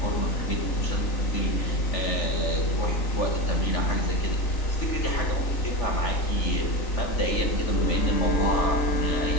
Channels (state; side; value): late; right; 3.4 ms